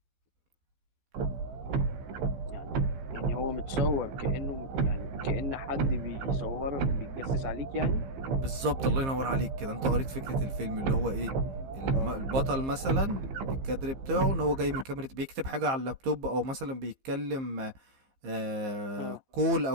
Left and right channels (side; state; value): left; late; 15 ms